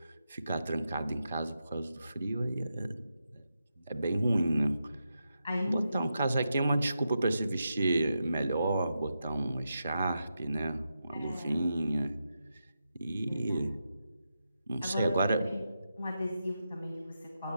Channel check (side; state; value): both; inverted; correlation -0.87